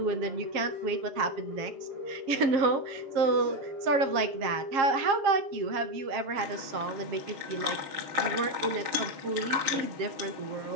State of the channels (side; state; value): left; late; 7.4 ms